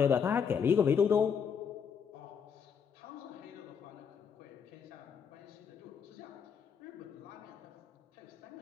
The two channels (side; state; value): right; quieter; 6.9 dB